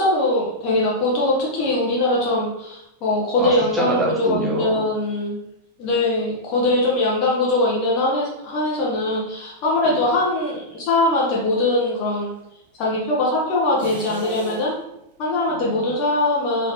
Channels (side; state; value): both; normal; correlation -0.12